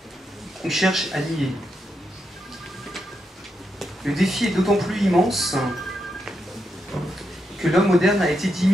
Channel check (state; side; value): normal; both; correlation 0.83